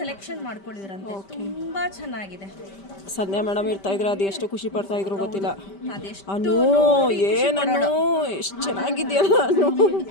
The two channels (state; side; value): late; right; 5.1 ms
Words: ಮಾಡ್ಕೊಳ್ಳಿರಂತೆ. ತುಂಬಾ ಚೆನ್ನಾಗಿದೆ. ಸಂಧ್ಯಾ ಮೇಡಮ್ ಇರ್ತಾ ಇದ್ರು, ಅದು ಎಷ್ಟು ಖುಷಿ ಪಡ್ತಾ ಇದ್ರು ಗೊತ್ತಿಲ್ಲ. ಅದೆಷ್ಟು ಅನು ಏನನ್ನು ಎಷ್ಟು ಚೆನ್ನಾಗಿದೆಯಲ್ಲ ಅನು.